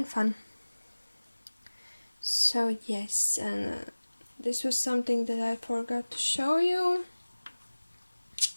fun. So yes, and this was something that I forgot to show you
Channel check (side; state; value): both; inverted; correlation -1.00